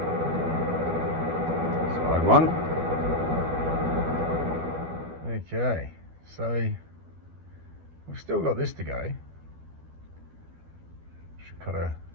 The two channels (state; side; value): late; left; 12 ms